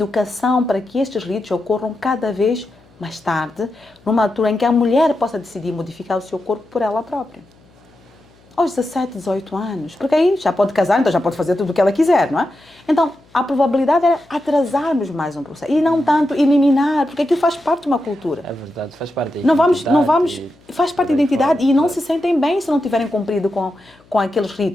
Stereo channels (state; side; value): noise; left; hum, 30 dB below the sound